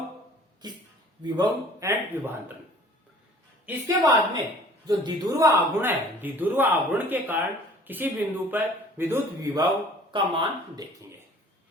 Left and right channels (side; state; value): both; normal; correlation 0.50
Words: विभव एंड विभवांतरण। इसके बाद में जो द्विध्रुव आघूर्ण है, द्विध्रुव आघूर्ण के कारण किसी बिंदु पर विद्युत विभव का मान देखेंगे।